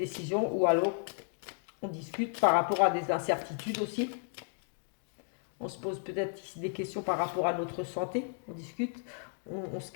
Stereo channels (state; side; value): silent; right; 55 dB below the other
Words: ou alors on discute par rapport à des incertitudes aussi. On se pose peut-être ici des questions par rapport à notre santé, on discute, on se